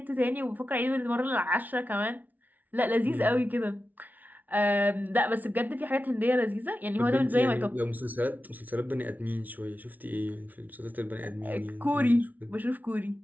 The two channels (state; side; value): late; left; 0.079 ms